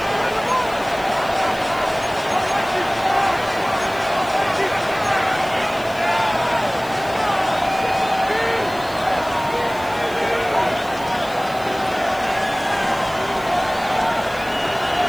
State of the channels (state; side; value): noise; left; hiss, 20 dB below the sound